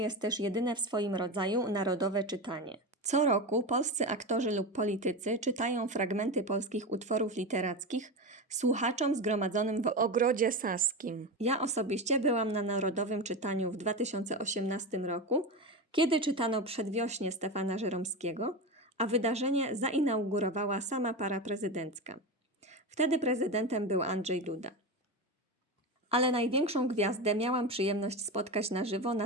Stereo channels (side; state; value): both; normal; correlation 0.21